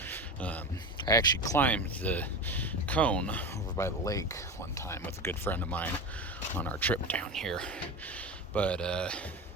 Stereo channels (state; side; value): normal; both; correlation 0.24